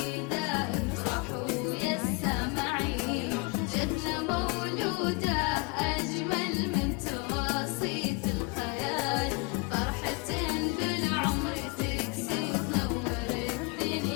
افرحوا يا السامعين. جتنا مولودة بسيطة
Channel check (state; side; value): quieter; right; 29.4 dB